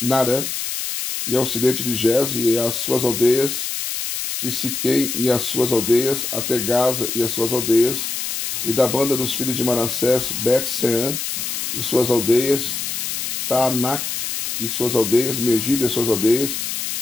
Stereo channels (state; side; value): noise; left; hiss, 3 dB below the sound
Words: e ao ocidente de Gez e as suas aldeias, e Siquém e as suas aldeias, até Gaza e as suas aldeias, e da banda dos filhos de Manassés, Bet-Seã e suas aldeias, Taanac e suas aldeias, Megiddo e as suas aldeias,